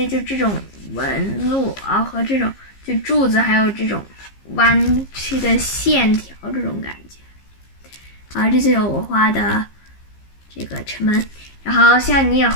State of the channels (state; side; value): late; right; 15 ms